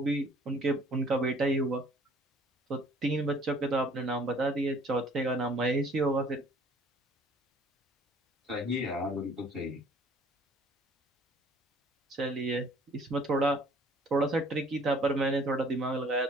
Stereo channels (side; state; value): both; normal; correlation 0.55